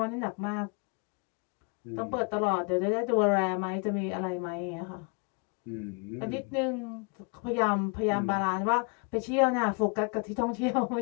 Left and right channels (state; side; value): quieter; right; 35.1 dB